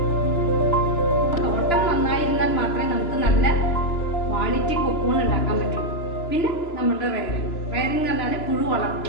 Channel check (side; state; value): right; late; 3.0 ms